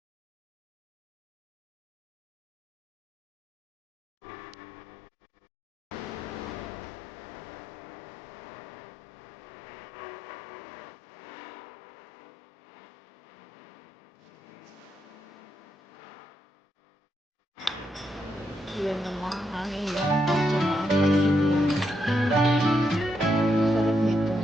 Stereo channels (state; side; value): normal; both; correlation 0.81